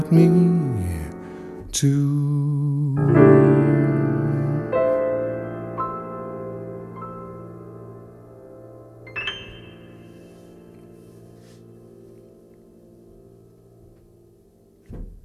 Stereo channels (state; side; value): identical; both; correlation 1.00